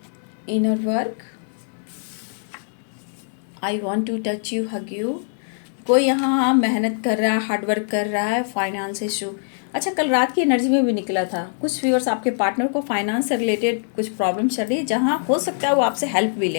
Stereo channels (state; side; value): silent; right; digital silence